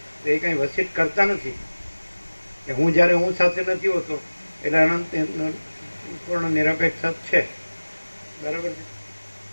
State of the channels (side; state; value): both; inverted; correlation -1.00